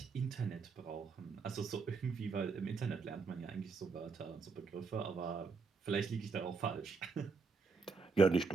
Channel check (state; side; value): quieter; left; 4.8 dB